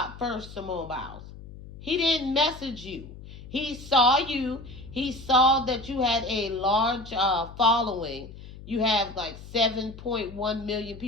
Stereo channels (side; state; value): left; noise; hum, 15 dB below the sound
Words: first, Simone Biles. He didn't message you. He saw you. He saw that you had a large following. You have like 7.1 million